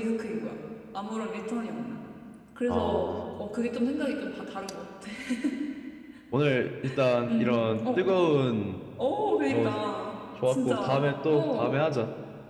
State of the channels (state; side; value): identical; both; correlation 1.00